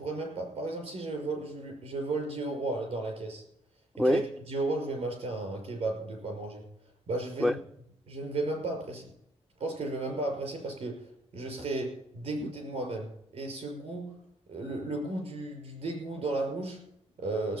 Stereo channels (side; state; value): both; normal; correlation 0.68